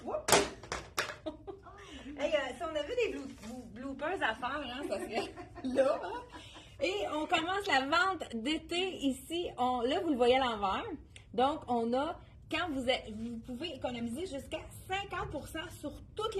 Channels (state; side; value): identical; both; correlation 1.00